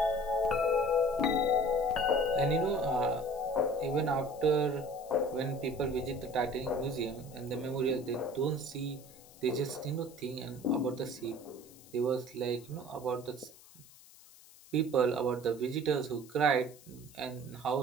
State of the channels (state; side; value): noise; left; hiss, 22 dB below the sound